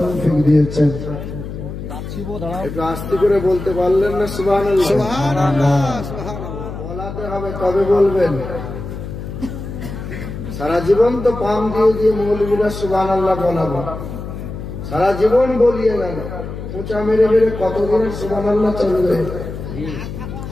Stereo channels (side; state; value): left; noise; hum, 8 dB below the sound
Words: দিয়েছেন। একটু আস্তে করে বলতে পারলেন না? সুবহানাল্লাহ। বলাতে হবে, তবে বলবেন। সারা জীবন তো পাম দিয়ে দিয়ে মৌলবীরা সুবহানাল্লাহ বলাবো, সারা জীবন বলিয়ে গেল, খোঁচা মেরে মেরে কতদিনের সুবহানাল্লাহ চলবে।